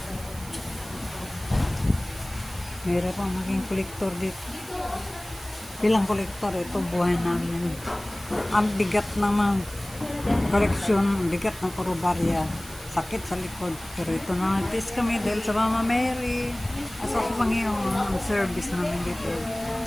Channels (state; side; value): noise; right; hiss, 17 dB below the sound